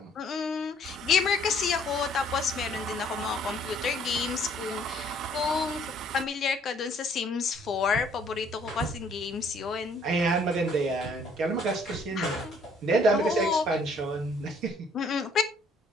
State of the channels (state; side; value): normal; both; correlation 0.61